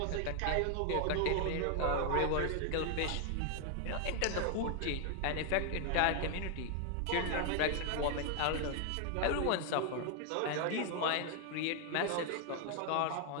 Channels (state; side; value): different; both; correlation 0.00